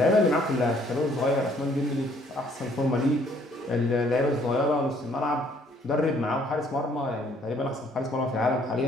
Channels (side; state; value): both; normal; correlation 0.63